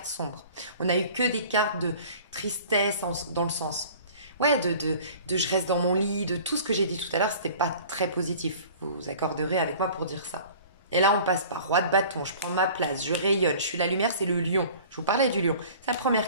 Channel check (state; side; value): inverted; both; correlation -0.45